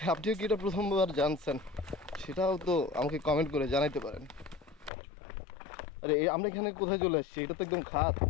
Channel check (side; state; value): right; drops out; at 4.9 s